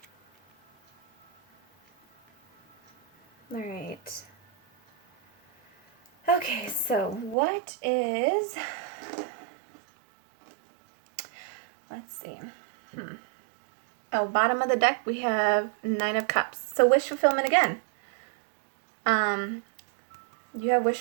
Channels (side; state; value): left; drops out; at 7.4 s